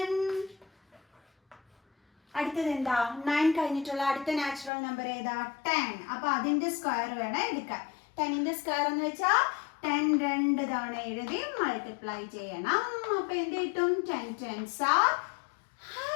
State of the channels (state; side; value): drops out; right; at 4.7 s